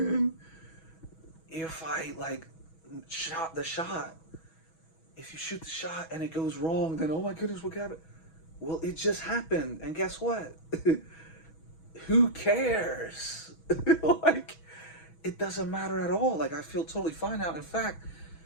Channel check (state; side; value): late; right; 6.2 ms